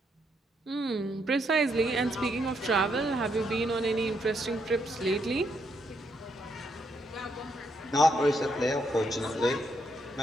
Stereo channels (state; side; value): normal; both; correlation 0.76